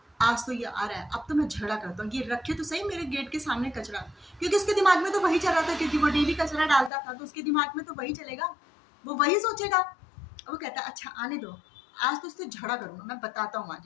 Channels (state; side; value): drops out; right; at 6.9 s